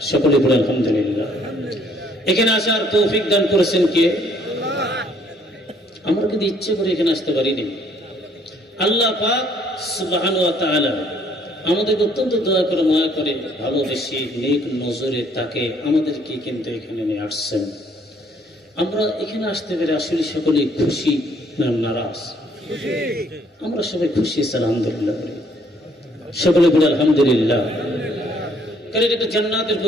সকলে বলে আলহামদুলিল্লাহ। এখানে আসার তৌফিক দান করেছেন কে? আমরা কিন্তু ইচ্ছে করে এখানে আসতে পারিনি। আল্লাহ পাক সুবহানাহু ওয়া তাআলা আমাদেরকে অত্যন্ত দয়া করে, মায়া করে, ভালোবেসে, নেক নজরে তাকে আমাদেরকে কিন্তু এখানে নিয়ে আসছেন। আমরা এখানে আসতে পেরে আসলে সকলে খুশি না নারাজ? আমরা সবাই খুশি, আলহামদুলিল্লাহ। সকলে বলে আলহামদুলিল্লাহ। কারণ এটা জান্নাতের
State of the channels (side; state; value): both; normal; correlation 0.64